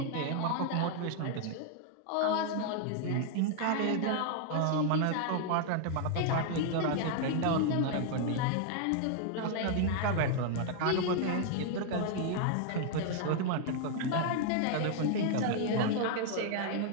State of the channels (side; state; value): both; different; correlation 0.00